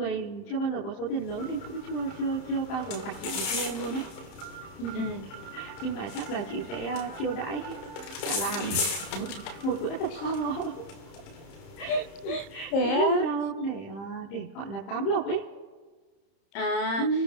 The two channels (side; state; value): right; late; 30 ms